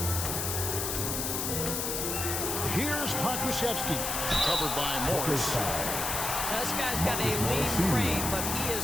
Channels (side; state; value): left; noise; hiss, 1 dB below the sound